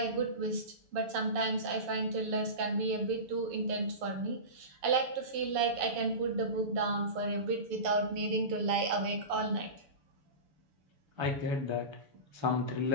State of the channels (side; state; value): left; late; 7.0 ms